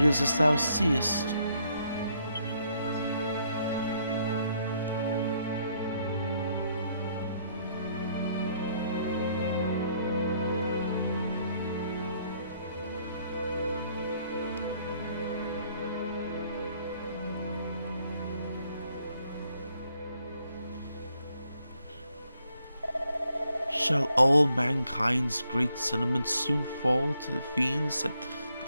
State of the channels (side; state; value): both; inverted; correlation -0.71